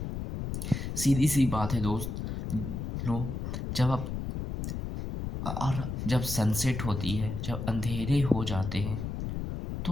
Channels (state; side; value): noise; left; rumble, 4 dB below the sound